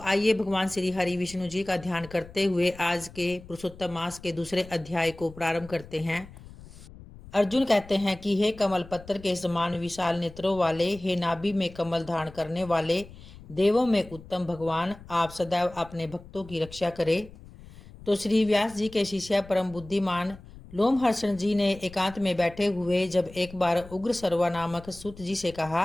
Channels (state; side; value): noise; left; rumble, 19 dB below the sound